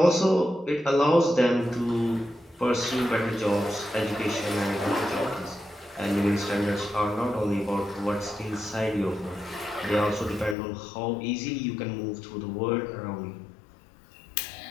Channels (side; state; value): right; drops out; at 10.6 s